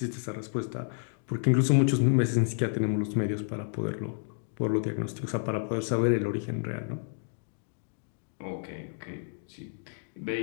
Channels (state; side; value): silent; right; digital silence